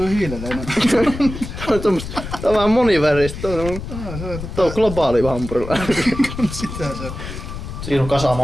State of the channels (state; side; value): noise; left; rumble, 9 dB below the sound